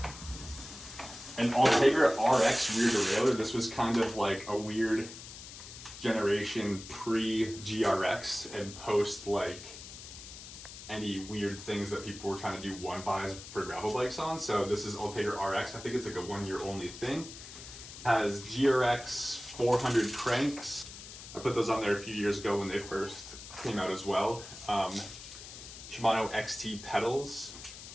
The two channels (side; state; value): left; noise; hiss, 13 dB below the sound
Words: an Ultegra RX rear derailleur. This was kind of like a weird generation pre-GRX and post like any weird things that people were trying to do one-buys for gravel bikes on. So this is Ultegra RX. I think it's like a one-year only thing. Has GRX 400 cranks. I put those on there a few years ago when they first came out as well. Shimano XT pedals.